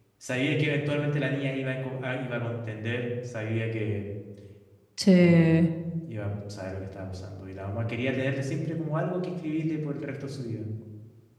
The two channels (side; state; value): both; identical; correlation 1.00